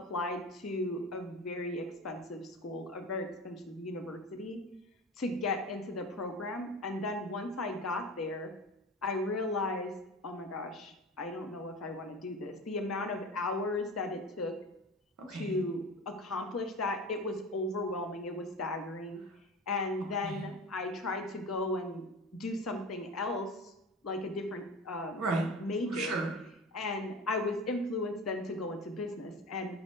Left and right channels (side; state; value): both; normal; correlation 0.32